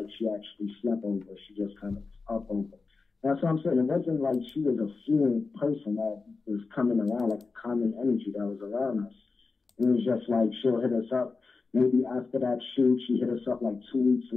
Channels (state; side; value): quieter; right; 4.2 dB